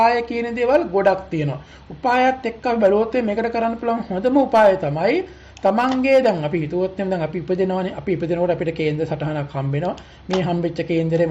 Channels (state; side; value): identical; both; correlation 1.00